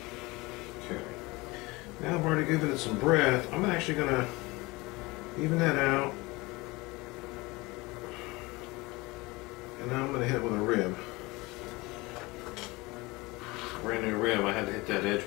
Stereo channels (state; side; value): quieter; right; 23.0 dB